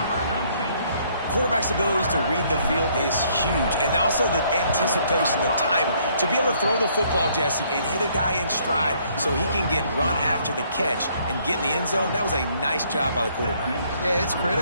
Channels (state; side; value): inverted; both; correlation -0.65